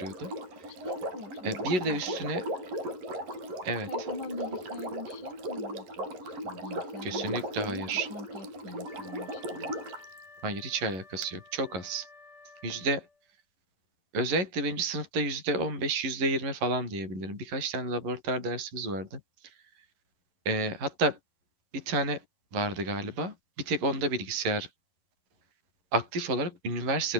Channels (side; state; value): left; late; 11 ms